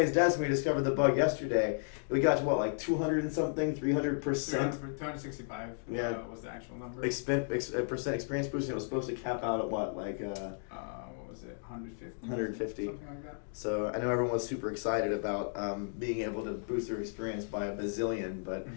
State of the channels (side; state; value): right; silent; digital silence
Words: desk when we discovered the bug yesterday. We got to what, like 200 and something, 300%. 265 Yeah. Was the actual number. Percent experience boost, and it was supposed to cap out at what, like What was it? 150? 150. Something like that. So I know everyone was super excited about being able to boost their experience by a bazillion, but